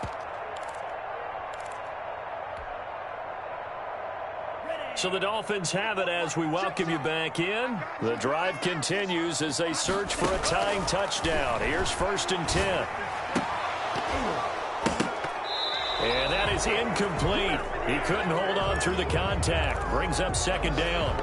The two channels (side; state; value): both; identical; correlation 1.00